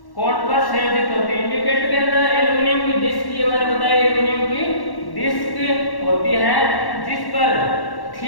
कोण पर संयोजित होती है। इंडिकेटर के अंदर एल्यूमिनियम की डिस्क, ये मैंने बताया एल्यूमिनियम की डिस्क होती है जिस पर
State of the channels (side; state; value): right; late; 1.1 ms